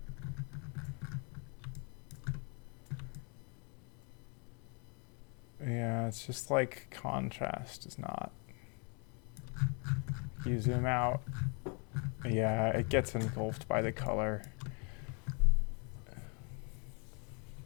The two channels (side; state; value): right; quieter; 35.8 dB